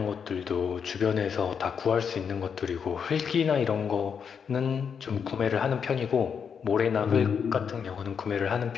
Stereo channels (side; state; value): right; quieter; 6.8 dB